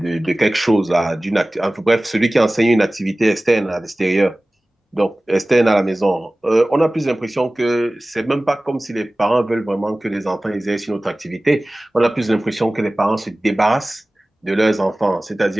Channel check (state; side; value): normal; both; correlation 0.98